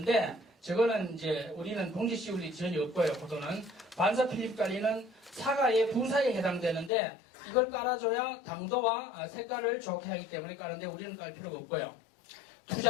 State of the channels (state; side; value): drops out; right; at 6.9 s